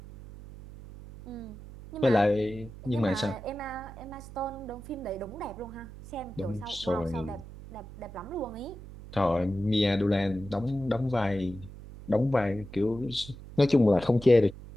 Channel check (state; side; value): noise; right; hum, 15 dB below the sound